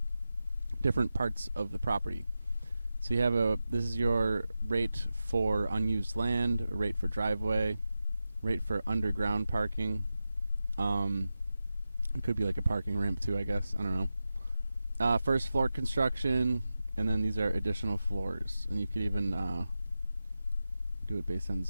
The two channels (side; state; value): both; inverted; correlation -0.91